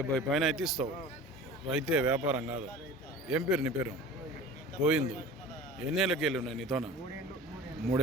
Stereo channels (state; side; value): normal; both; correlation 0.39